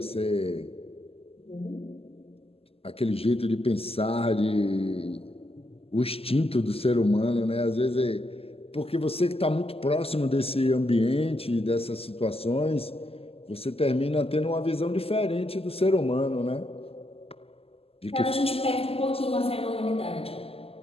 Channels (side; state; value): right; late; 0.28 ms